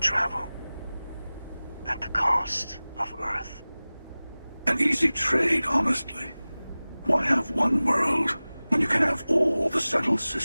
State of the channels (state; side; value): inverted; both; correlation -0.98